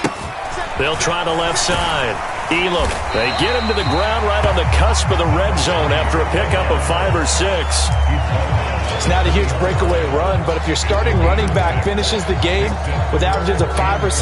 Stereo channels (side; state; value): both; identical; correlation 1.00